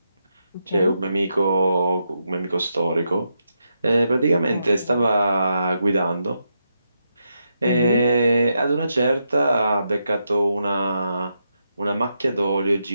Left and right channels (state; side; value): inverted; both; correlation -0.83